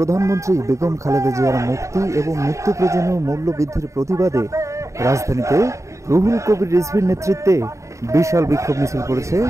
বেগম খালেদা জিয়ার মুক্তি এবং নিত্য প্রয়োজনীয় মূল্য বৃদ্ধির প্রতিবাদে রাজধানীতে রুহুল কবির রিজভীর নেতৃত্বে বিশাল বিক্ষোভ মিছিল করেছে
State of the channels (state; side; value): late; left; 0.15 ms